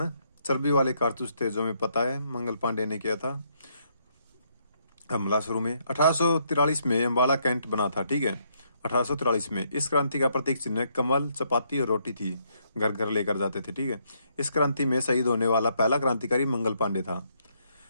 चर्बी वाले कारतूस थे, जो हमें पता है मंगल पांडे ने किया था हमला शुरू में। 1843 में अम्बाला कैंट बना था। ठीक है, 1843 में। इस क्रांति का प्रतीक चिन्ह कमल, चपाती और रोटी थी, घर घर लेकर जाते थे। ठीक है, इस क्रांति में शहीद होने वाला पहला क्रांतिकारी मंगल पांडे था।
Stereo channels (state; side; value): inverted; both; correlation -0.73